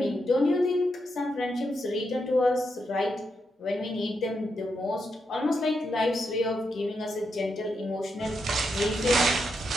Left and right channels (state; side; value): normal; both; correlation 0.83